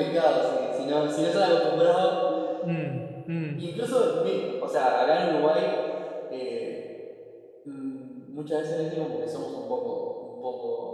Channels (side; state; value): both; identical; correlation 1.00